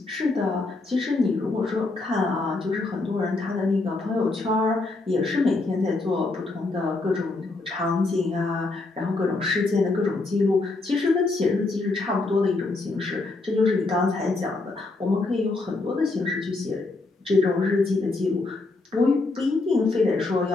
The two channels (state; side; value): quieter; right; 3.3 dB